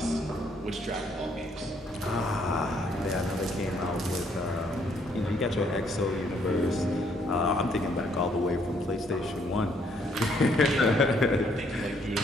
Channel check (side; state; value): both; normal; correlation 0.68